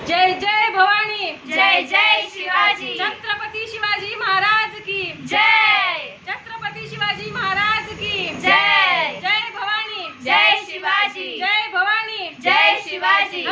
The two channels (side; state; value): both; identical; correlation 1.00